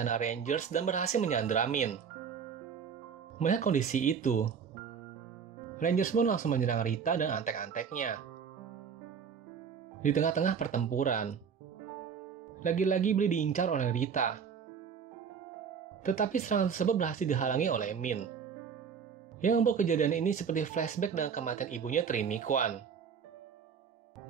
Rangers dan berhasil menyandra Min. Melihat kondisi itu, Rangers pun langsung menyerang Rita dan antek-anteknya. Di tengah-tengah pertempuran, lagi-lagi Billy diincar oleh Rita. Tetapi serangan tersebut berhasil dihalangi oleh Min, yang membuat kejadian ini seperti flashback dengan kematian ibunya Trini Kwan.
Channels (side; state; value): left; quieter; 6.8 dB